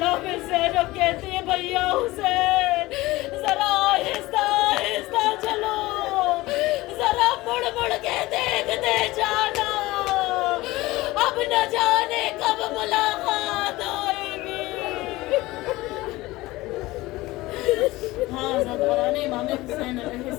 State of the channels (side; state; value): right; quieter; 19.3 dB